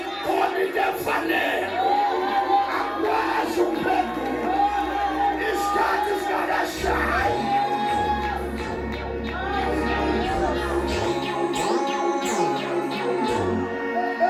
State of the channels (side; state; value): both; identical; correlation 1.00